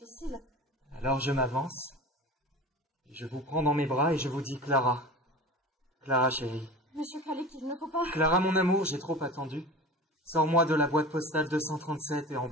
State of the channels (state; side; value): normal; both; correlation 0.33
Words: Alors je m'avance, et je vous prends dans mes bras et je vous dis Clara. Clara, chérie. Monsieur Khalik, il ne faut pas... Clara, mon amour, j'ai trop attendu. Sors-moi de la boîte postale 237 et